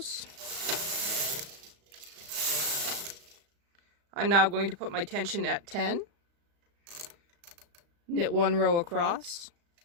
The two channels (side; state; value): left; late; 35 ms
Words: I'm now going to put my tension at 10. Knit 1 row across.